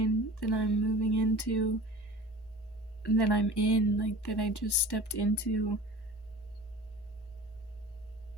that I'm moving into, that I'm in, like that I just stepped into,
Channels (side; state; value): both; normal; correlation 0.39